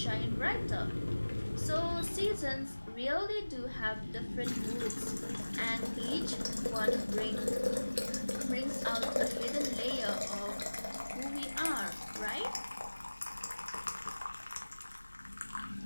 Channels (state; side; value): inverted; both; correlation -1.00